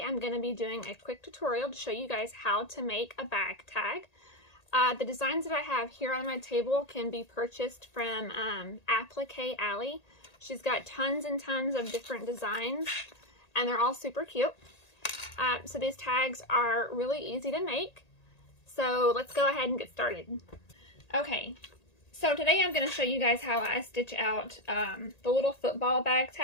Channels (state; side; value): late; right; 1.8 ms